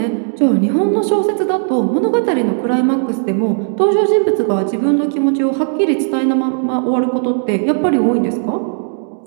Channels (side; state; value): left; silent; digital silence